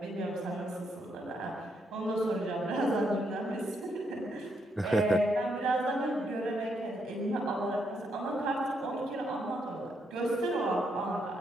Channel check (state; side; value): normal; both; correlation 0.77